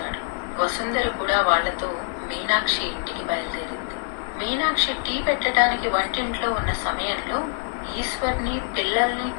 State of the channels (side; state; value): right; silent; 62 dB below the other